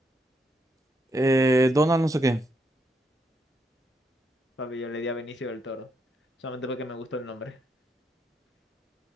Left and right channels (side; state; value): both; normal; correlation 0.78